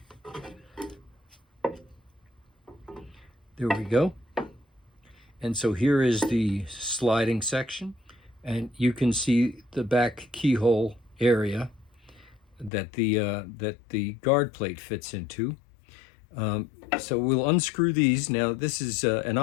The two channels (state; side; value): drops out; right; at 12.7 s